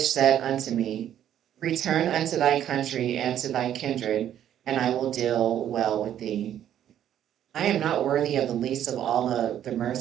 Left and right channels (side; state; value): left; quieter; 10.7 dB